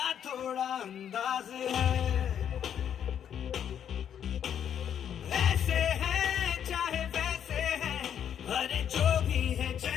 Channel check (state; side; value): quieter; right; 9.1 dB